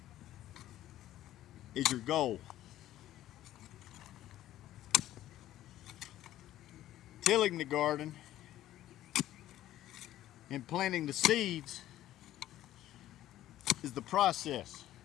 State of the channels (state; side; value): quieter; right; 13.6 dB